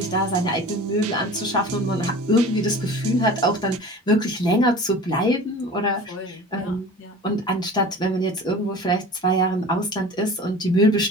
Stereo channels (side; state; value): both; normal; correlation 0.39